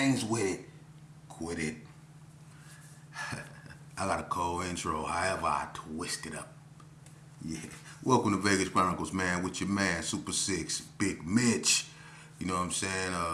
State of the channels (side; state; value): both; identical; correlation 1.00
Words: with it, quit it. I got a cold intro, however I twist it up. Yeah. Welcome to Vegas Chronicles, man, with your man, Super 6, Big Mitch. You know what I'm saying?